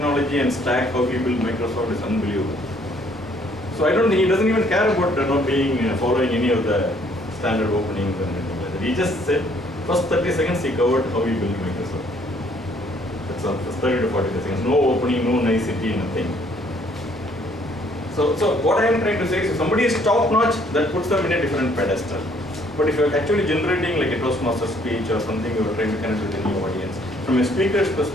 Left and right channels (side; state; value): both; normal; correlation 0.63